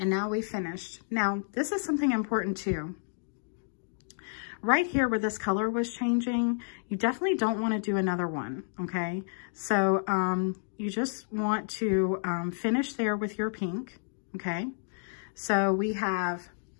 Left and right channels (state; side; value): silent; right; digital silence